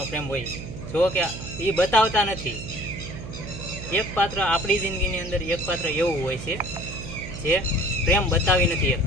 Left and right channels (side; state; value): right; noise; hum, 10 dB below the sound